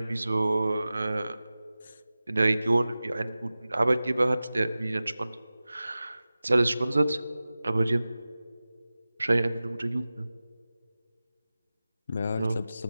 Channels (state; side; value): inverted; both; correlation -0.96